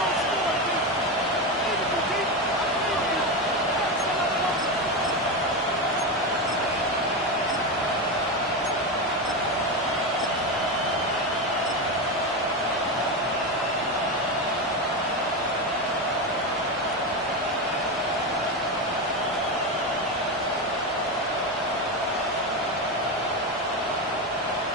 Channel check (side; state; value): both; normal; correlation 0.15